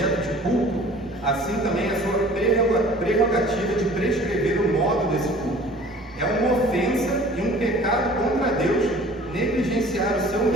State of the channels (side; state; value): both; normal; correlation 0.48